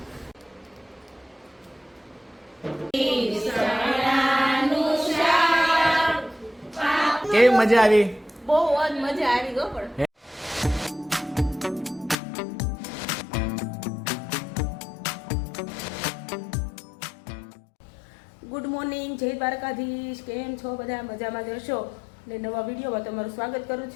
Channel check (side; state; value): right; drops out; at 12.2 s